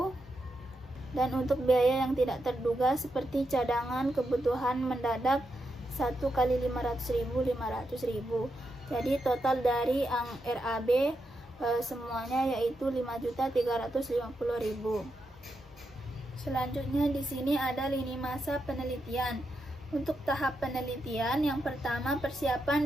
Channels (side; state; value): both; normal; correlation 0.85